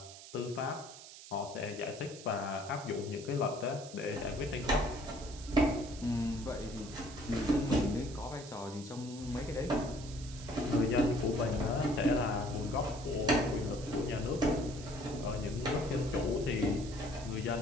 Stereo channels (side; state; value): right; noise; hiss, 15 dB below the sound